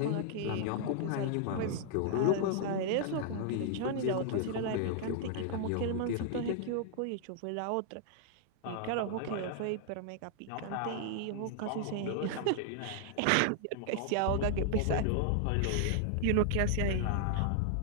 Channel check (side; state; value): both; different; correlation -0.01